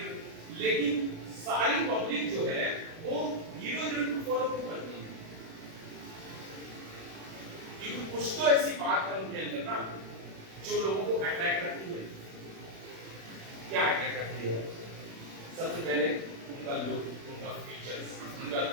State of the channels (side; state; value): left; late; 36 ms